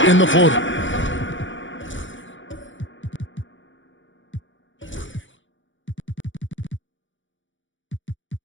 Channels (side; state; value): right; late; 0.56 ms